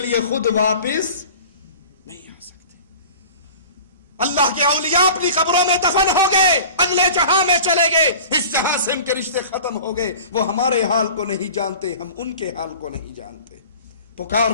خود واپس نہیں آ سکتے. اللہ کے اولیاء اپنی قبروں میں دفن ہو گئے, اگلے جہاں میں چلے گئے, اس جہاں سے ان کے رشتے ختم ہو گئے. وہ ہمارے حال کو نہیں جانتے, ہم ان کے حال کو نہیں جانتے.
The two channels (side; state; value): both; inverted; correlation -0.41